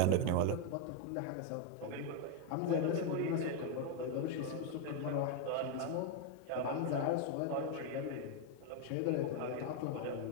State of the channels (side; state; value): both; different; correlation 0.01